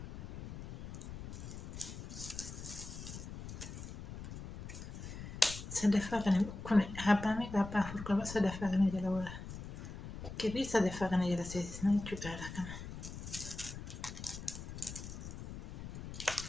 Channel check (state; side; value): noise; left; rumble, 9 dB below the sound